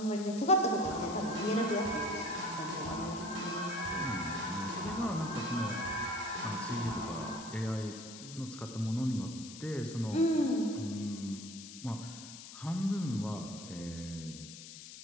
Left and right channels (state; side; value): noise; left; hiss, 13 dB below the sound